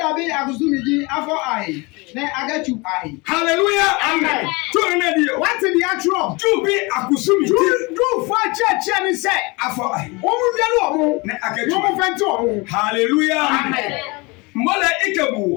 bi agusumiji afọ ahi ne agachu ahi. hallelujah Amen. to ne dio wate dia tro ju bi akusumi du fo cheche ni se afọ ai wo mu wiale o mu ne wo akechu mu fenti o mu hallelujah amen mole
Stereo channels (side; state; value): right; quieter; 26.3 dB